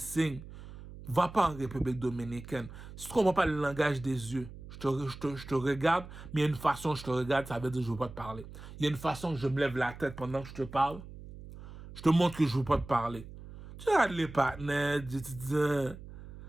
va pas en République dominicaine. Si tu comprends pas le langage des yeux, je te regarde, mais il y a une façon que je te regarde, ça veut dire que je ne veux pas te parler. Il y a une façon que je me lève la tête pendant que je te parle, je te montre que je ne veux pas te parler. Tu regardes les partenaires, tu dis,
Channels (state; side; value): noise; right; hum, 15 dB below the sound